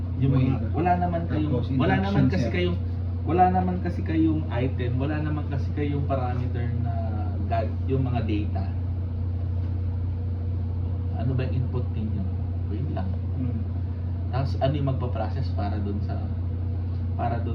Yung mga, Wave. wala naman kayong, Tapos wala naman induction kasi set. kayong, wala naman kasi kayong item, wala naman kasi kayong parameter na yung mga data. Ano ba yung input ninyo? Wave lang. Mhm. Tapos ano yung magpa-process para doon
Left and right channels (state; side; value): identical; both; correlation 1.00